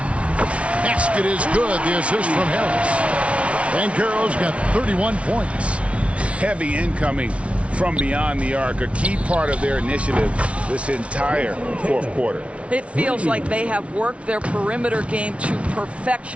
Basket is good. The assist from Harris. Banchero's got 31 points. Heavy incoming from beyond the arc, a key part of their initiative this entire fourth quarter. It feels like they have worked their perimeter game to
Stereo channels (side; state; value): left; late; 0.062 ms